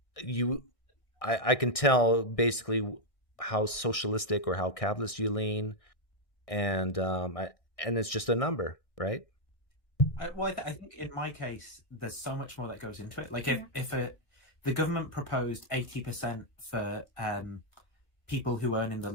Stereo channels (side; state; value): right; late; 1.6 ms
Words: I can tell basically how socialistic or how capitalist you lean, and it's just a number, right? I think in my case, there's so much more that goes into it. Like if the government proposed 80% for people who earn in the